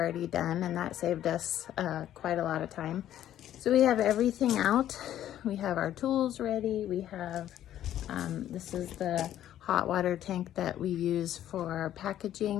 done, and that saved us quite a lot of time. So we have everything out. We have our tools ready. We have, this is the hot water tank that we use for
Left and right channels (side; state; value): right; quieter; 11.8 dB